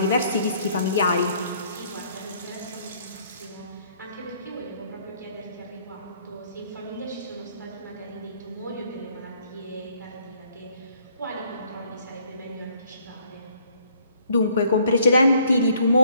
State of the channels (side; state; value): both; inverted; correlation -0.64